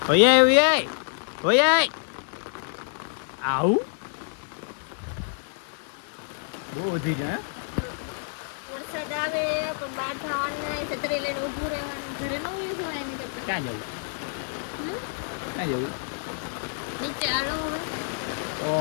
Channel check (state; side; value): silent; right; 60 dB below the other